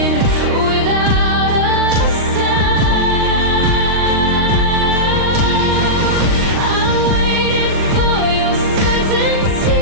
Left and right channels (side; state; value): left; late; 39 ms